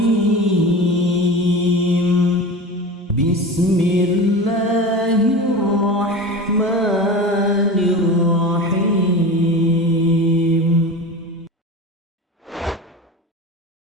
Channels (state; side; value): normal; both; correlation 0.31